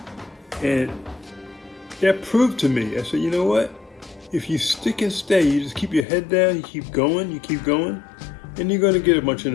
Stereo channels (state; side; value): drops out; right; at 6.1 s